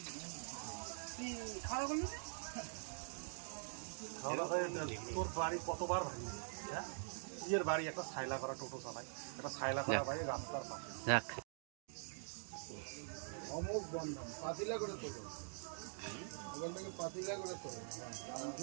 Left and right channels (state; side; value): silent; left; digital silence